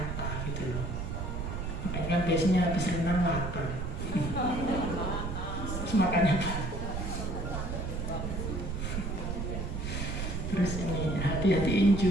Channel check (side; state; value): right; noise; rumble, 4 dB below the sound